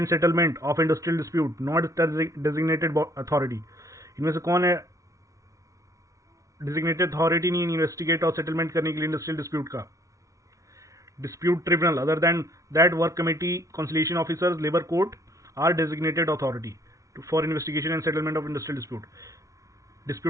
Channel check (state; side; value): late; left; 0.16 ms